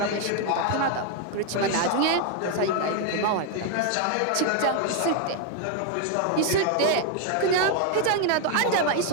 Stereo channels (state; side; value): different; both; correlation 0.01